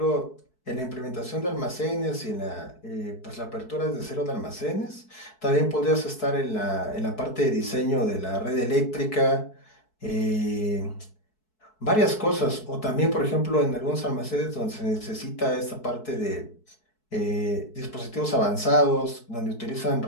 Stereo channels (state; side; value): late; right; 4.6 ms